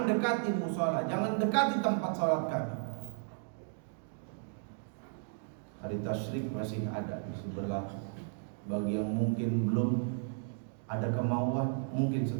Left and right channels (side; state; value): left; silent; 55 dB below the other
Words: dekati musala, jangan dekati tempat salat kami. Hari tasyrik masih ada, masih berlaku. Bagi yang mungkin belum ada kemauan, mungkin